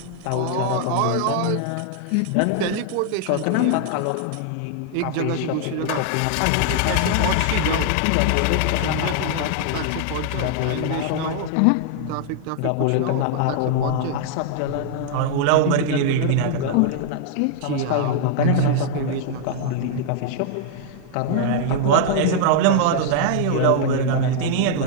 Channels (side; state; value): both; different; correlation -0.01